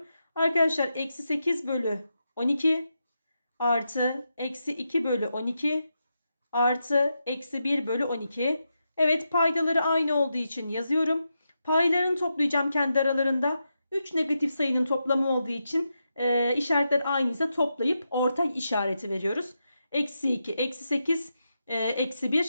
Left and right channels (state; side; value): inverted; both; correlation -0.86